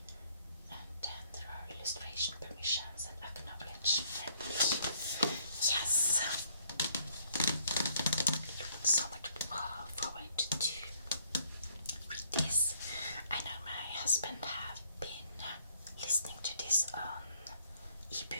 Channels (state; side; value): inverted; both; correlation -0.66